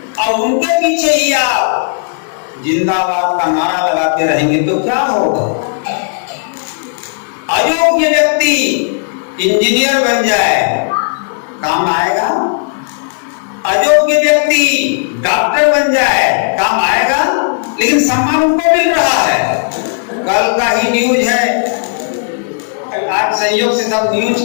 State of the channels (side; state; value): right; silent; digital silence